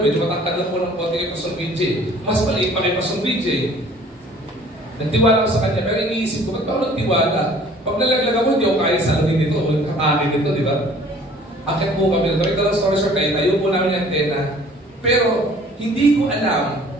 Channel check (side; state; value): both; normal; correlation 0.52